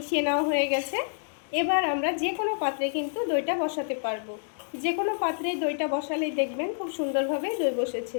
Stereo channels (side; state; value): right; silent; digital silence